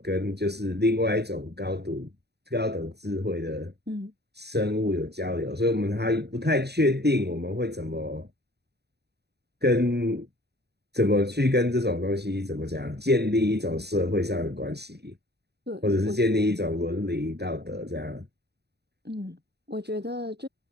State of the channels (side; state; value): left; late; 0.48 ms